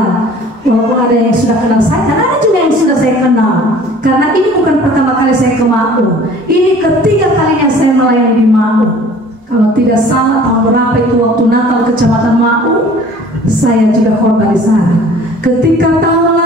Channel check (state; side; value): normal; both; correlation 0.49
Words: Walaupun ada yang sudah kenal saya, dan ada juga yang sudah saya kenal. Karena ini bukan pertama kali saya ke MAU, ini ketiga kalinya saya melayani di MAU. Kalau tidak salah tahun berapa itu waktu Natal Kecamatan MAU, saya juga korban di sana. Ketika tahun